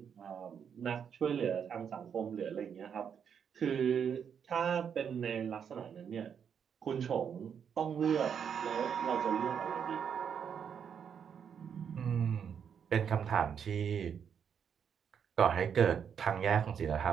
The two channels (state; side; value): quieter; left; 7.6 dB